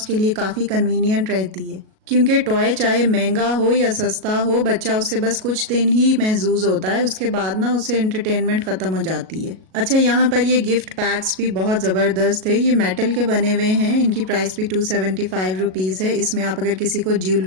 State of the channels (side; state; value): left; late; 37 ms